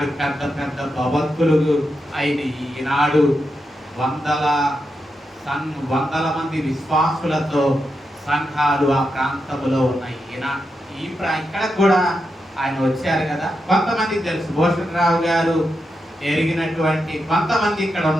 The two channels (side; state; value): both; normal; correlation 0.86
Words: పెద్ద పెద్ద భవంతులు అయిన ఈనాడు వందల మంది విశ్వాసులతో సంఘాలు ఆ ప్రాంతంలో ఉన్నాయి. ఇక్కడ కూడా ఆయన వచ్చారు కదా, కొంతమందికి తెలుసు. భూషణరావు గారు ఎరిగినటువంటి కొంతమంది ఇక్కడ